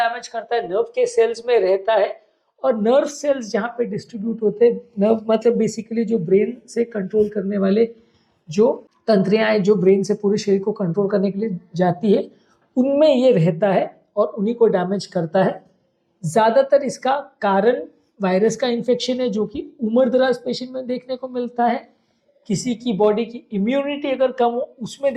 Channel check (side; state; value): both; identical; correlation 1.00